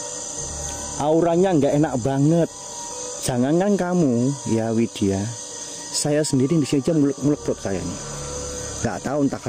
Auranya nggak enak banget. Jangankan kamu ya Widya, saya sendiri di sini aja mulek perut saya nih. Nggak tahu entah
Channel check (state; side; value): identical; both; correlation 1.00